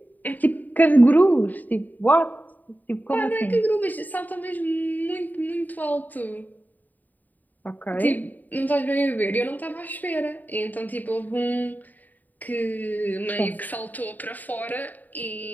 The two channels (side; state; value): right; late; 0.085 ms